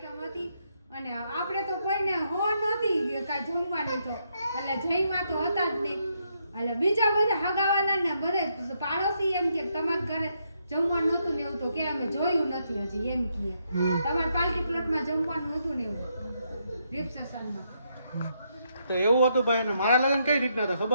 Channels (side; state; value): both; inverted; correlation -0.77